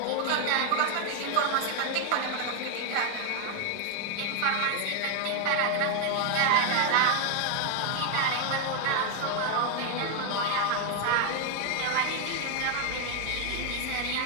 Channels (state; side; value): different; both; correlation 0.00